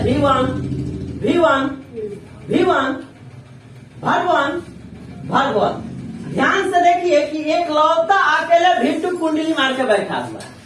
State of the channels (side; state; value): both; identical; correlation 1.00